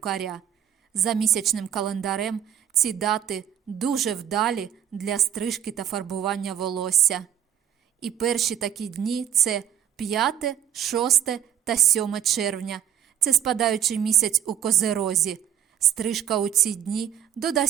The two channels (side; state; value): left; quieter; 9.8 dB